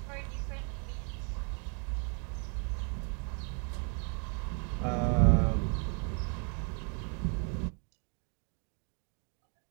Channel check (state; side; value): quieter; left; 38.7 dB